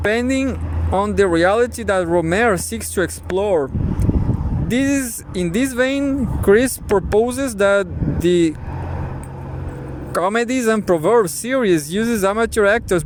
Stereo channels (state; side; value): identical; both; correlation 1.00